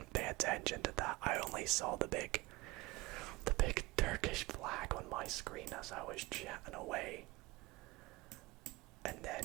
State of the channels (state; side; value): quieter; left; 21.8 dB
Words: pay attention to that. I only saw the big Turkish flag on my screen as I was chatting away. And